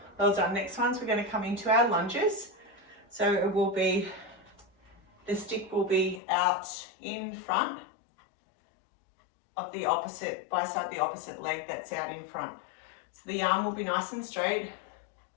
Well done. Next ones, we're going to come into our lunges. So it will be, the stick will be out in front of the opposite, by side the opposite leg that's out in front. So the arm will be nice and straight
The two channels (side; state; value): right; drops out; at 6.2 s